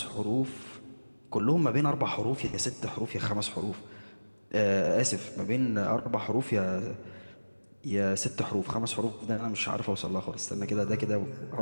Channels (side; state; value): both; inverted; correlation -1.00